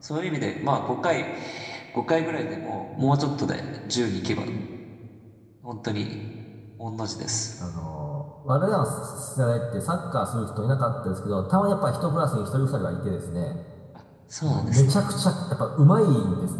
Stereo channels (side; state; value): both; identical; correlation 1.00